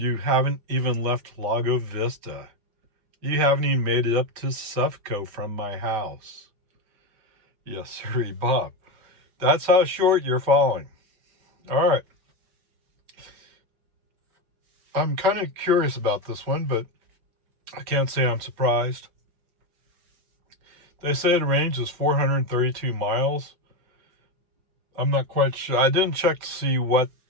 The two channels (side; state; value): left; late; 5.2 ms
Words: haven't even left Lago Vista. You haven't even made it up to Sufco from my house. Yes, sir, Bob. That's how short you're falling. All right. I'm kind of curious about this one, but I can't say I'm surprised. They say the range is 432 miles. I'm not quite sure. I didn't check to see what